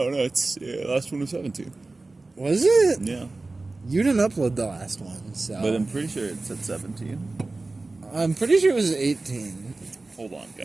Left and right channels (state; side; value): quieter; left; 3.3 dB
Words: it's last one was 17. Was it? Yeah. You didn't upload the last one, so. But I'm pretty sure it said 17. I'm pretty sure it was 18. Hold on,